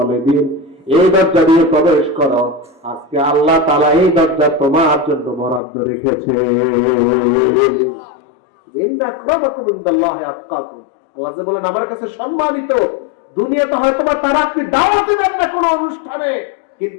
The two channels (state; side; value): drops out; right; at 5.6 s